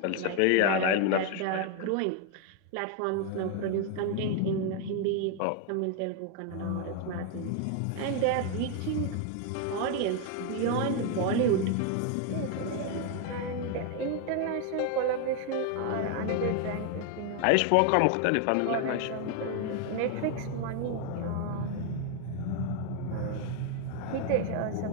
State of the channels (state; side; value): different; both; correlation 0.01